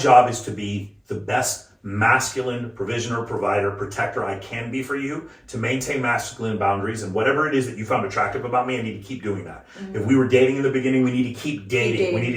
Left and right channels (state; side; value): identical; both; correlation 1.00